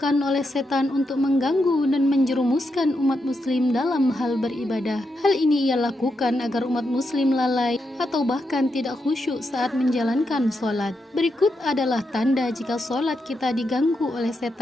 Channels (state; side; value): normal; both; correlation 0.84